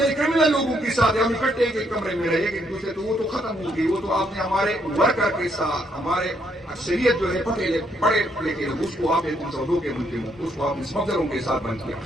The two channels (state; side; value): normal; both; correlation 0.73